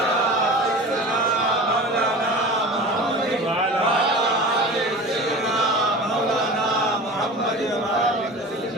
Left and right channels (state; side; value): normal; both; correlation 0.35